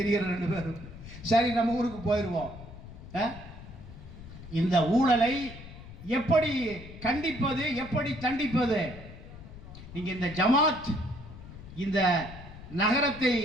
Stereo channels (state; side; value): noise; left; rumble, 15 dB below the sound